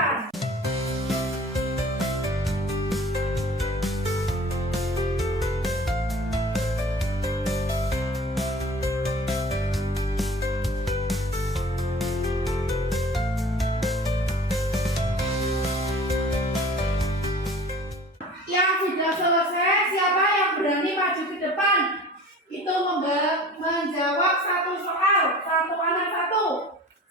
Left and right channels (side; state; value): both; normal; correlation 0.44